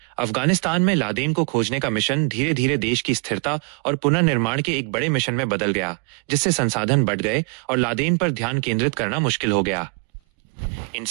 अफगानिस्तान में लादेन को खोजने का मिशन धीरे धीरे देश की स्थिरता और पुनर्निर्माण के एक बड़े मिशन में बदल गया, जिससे संसाधन बढ़ गए और लादेन पर ध्यान केंद्रित करना मुश्किल हो गया। इन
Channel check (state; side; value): quieter; left; 37.0 dB